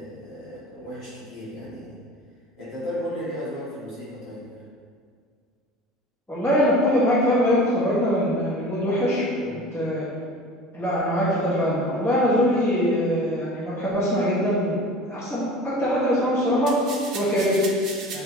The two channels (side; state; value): both; normal; correlation 0.40